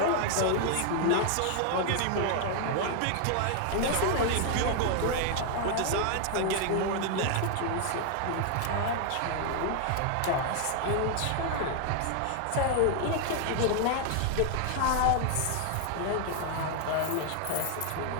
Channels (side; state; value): both; different; correlation 0.00